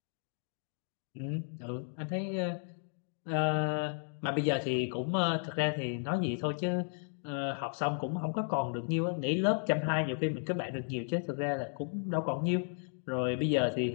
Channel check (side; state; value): right; silent; 55 dB below the other